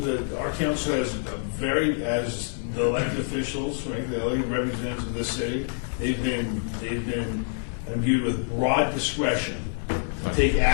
our council has as the elected officials, right, the elected representatives of this city, they've been imbued with broad discretion to take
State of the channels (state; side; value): silent; right; 61 dB below the other